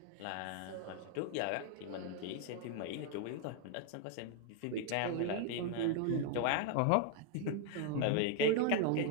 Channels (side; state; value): both; different; correlation 0.00